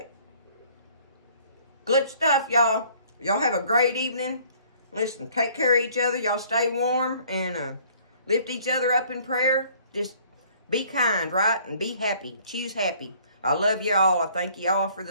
Good stuff, y'all. Y'all have a great evening. Listen, take care of each other. Y'all stay warm and lift each other up in prayer. Just be kind, right? And be happy. Choose happy. I love y'all. I thank y'all for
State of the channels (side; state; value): both; inverted; correlation -0.57